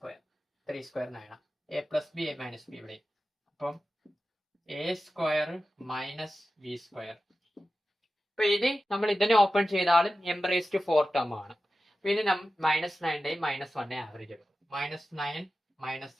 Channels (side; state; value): both; normal; correlation 0.93